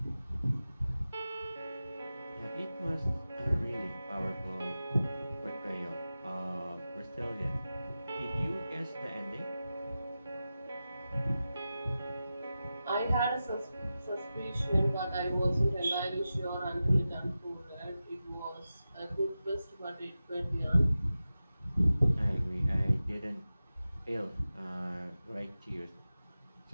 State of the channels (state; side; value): inverted; both; correlation -0.94